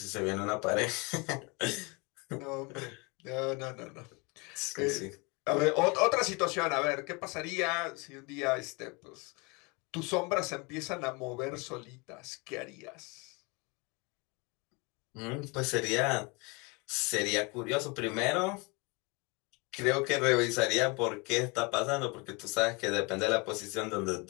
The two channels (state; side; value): quieter; right; 28.7 dB